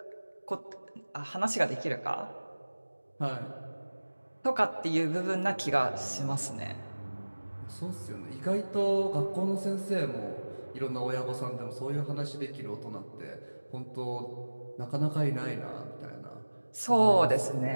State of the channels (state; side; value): inverted; both; correlation -1.00